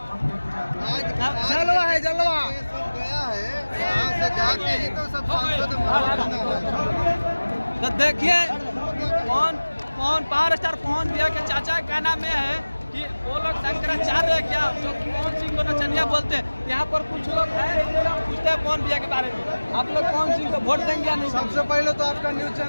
जलवा है, जलवा गया है यहाँ से जाके ही तो सब सांसद तो देखिए कौन पावर स्टार पवन भैया के चाचा का कहना में है कि वो लोग शंकराचार्य है क्या, जो पवन सिंह को नचनिया बोलते हैं। यहाँ पर कुछ लोग हैं पूछते हैं पवन भैया के बारे में, आप लोग पवन सिंह को वोट देंगे या नहीं? सबसे पहले तो आपका न्यूज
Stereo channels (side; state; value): both; inverted; correlation -1.00